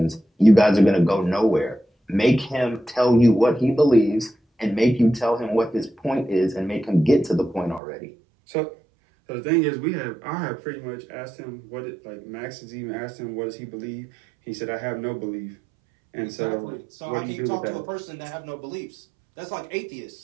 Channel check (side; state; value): left; drops out; at 7.8 s